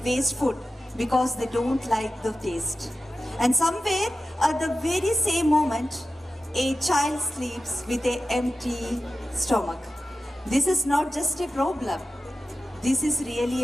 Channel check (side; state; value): both; normal; correlation 0.92